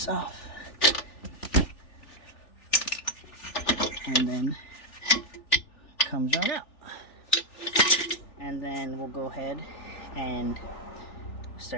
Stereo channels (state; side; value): late; right; 3.4 ms